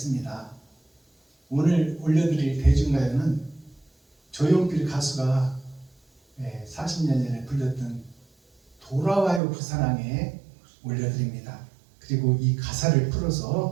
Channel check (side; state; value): left; drops out; at 9.4 s